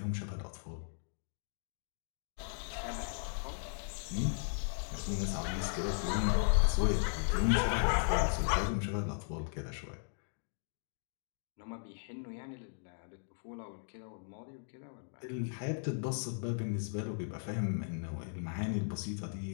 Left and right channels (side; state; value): right; silent; digital silence